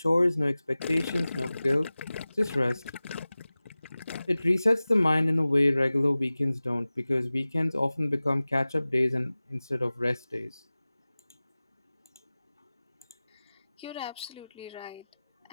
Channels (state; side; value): inverted; both; correlation -0.97